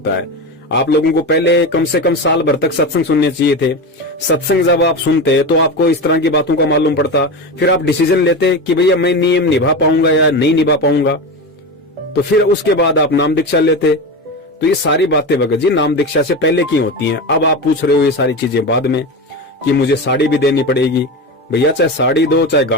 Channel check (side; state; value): both; normal; correlation 0.22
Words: है। आप लोगों को पहले कम से कम साल भर तक सत्संग सुनने चाहिए थे। सत्संग जब आप सुनते तो आपको इस तरह की बातों का मालूम पड़ता, फिर आप डिसीजन लेते कि भैया मैं नियम निभा पाऊंगा या नहीं निभा पाऊंगा, तो फिर उसके बाद आप नाम दीक्षा लेते। तो ये सारी बातें भगत जी नाम दीक्षा से पहले की होती हैं। अब आप पूछ रहे हो ये सारी चीजें बाद में कि मुझे साड़ी भी देनी पड़ेगी। भैया चाहे साड़ी दो चाहे